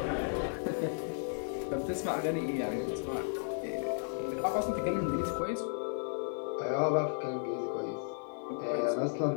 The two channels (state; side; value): silent; right; digital silence